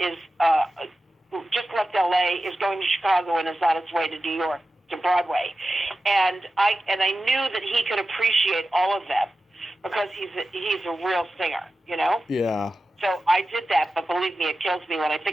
just left L.A., is going to Chicago, and is on its way to New York, to Broadway. And I knew that he could appreciate all of them because he's a real singer, Yeah. So I did that, but believe me, it kills me when I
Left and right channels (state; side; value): normal; both; correlation 0.93